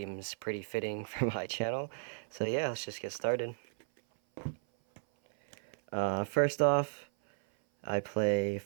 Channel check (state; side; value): silent; left; 55 dB below the other